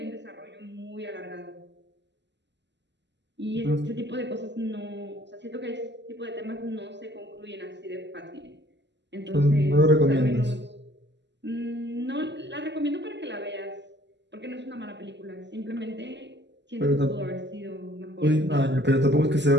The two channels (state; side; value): late; left; 0.51 ms